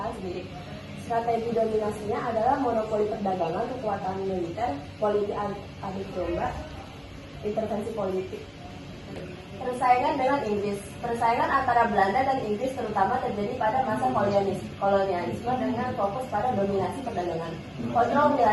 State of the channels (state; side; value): identical; both; correlation 1.00